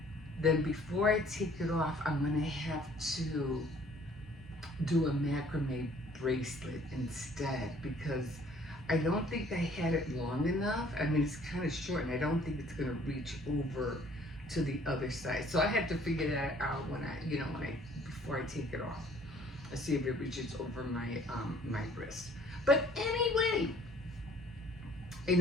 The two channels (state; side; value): normal; both; correlation 0.57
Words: then before I take it off, I'm gonna have to do a macrame bracelet instead, because I don't think I had it long enough. I mean, it's kind of short, and I don't think it's gonna reach over to the other side. So I have to figure that out when I, you know, before I take it off. I see if it reaches over my wrist. But anyway,